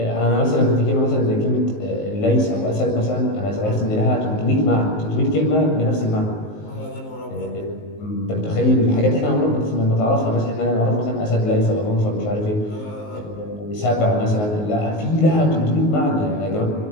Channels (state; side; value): late; right; 19 ms